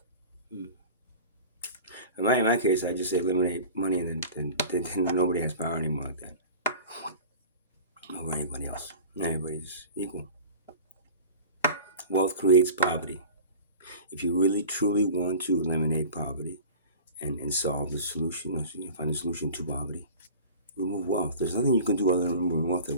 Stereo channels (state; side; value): inverted; both; correlation -0.38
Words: In my case, I just say eliminate money, and then nobody has power anymore like that over anybody else. Everybody's equal. Wealth creates poverty. If you really truly want to eliminate poverty and solve the solution, find the solution to poverty, remove wealth. There's nothing you can do other than remove wealth